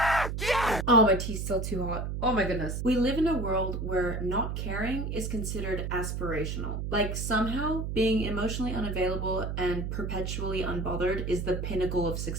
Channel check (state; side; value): noise; right; hum, 3 dB below the sound